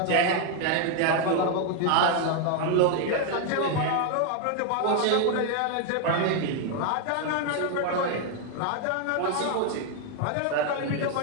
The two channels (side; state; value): both; different; correlation 0.01